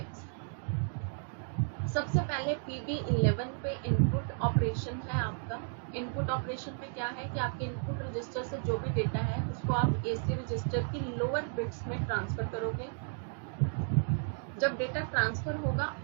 सबसे पहले PB11 पे इनपुट ऑपरेशन है आपका. इनपुट ऑपरेशन में क्या है कि आपके इनपुट रजिस्टर से जो भी डेटा है उसको आप AC रजिस्टर की लोअर बिट्स में ट्रांसफर करोगे. जब डेटा ट्रांसफर होगा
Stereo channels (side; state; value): left; silent; 56 dB below the other